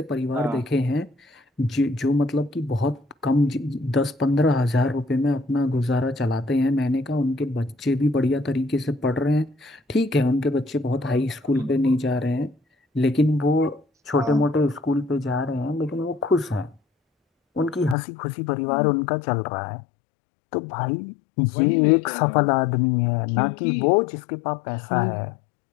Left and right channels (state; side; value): drops out; right; at 17.9 s